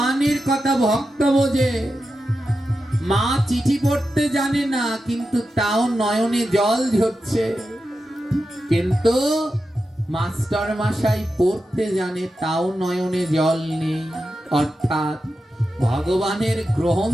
কথা ভক্ত বোঝে। মা চিঠি পড়তে জানে না, কিন্তু তাও নয়নে জল ঝরছে। কিন্তু মাস্টার মশাই পড়তে জানে, তাও নয়নে জল নেই। অর্থাৎ ভগবানের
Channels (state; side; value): normal; both; correlation 0.90